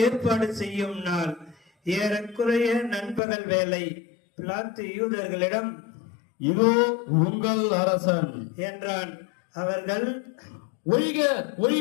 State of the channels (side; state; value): right; drops out; at 3.2 s